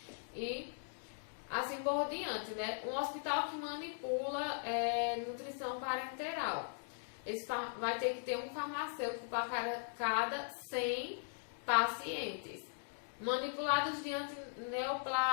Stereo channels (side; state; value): right; silent; digital silence